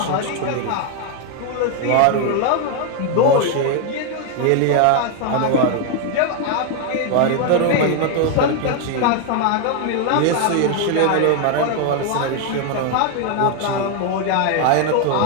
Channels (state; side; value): different; both; correlation 0.01